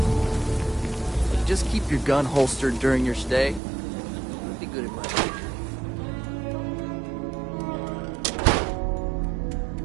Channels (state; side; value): drops out; left; at 3.6 s